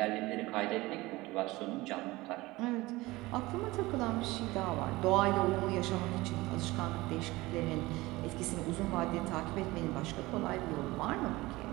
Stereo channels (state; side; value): quieter; left; 20.2 dB